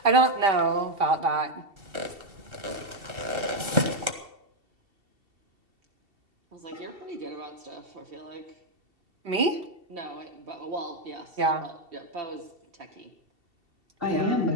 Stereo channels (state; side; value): late; left; 2.7 ms